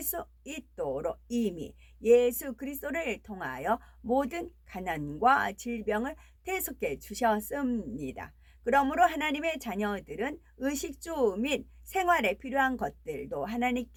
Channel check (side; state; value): both; identical; correlation 1.00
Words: 수 있도록 이미 예수 그리스도를 통하여 모든 가난과 질병을 대속해 주셨습니다. 그러므로 하나님의 자녀들은 의식주 및 생활에 필요한 것들도